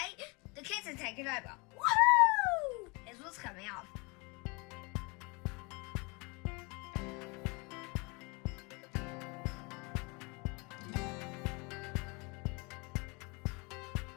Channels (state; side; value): quieter; right; 28.7 dB